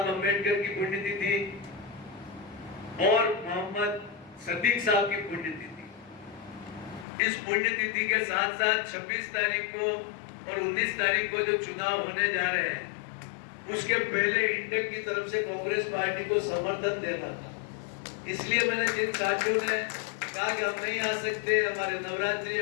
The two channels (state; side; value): drops out; right; at 7.1 s